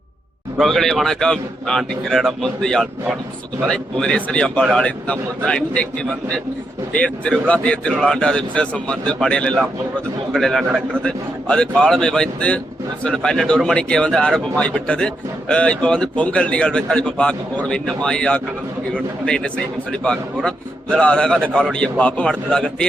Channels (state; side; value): normal; both; correlation 0.82